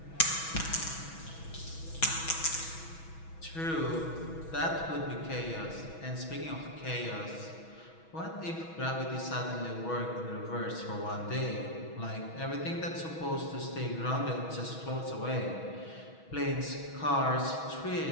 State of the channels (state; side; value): late; right; 6.2 ms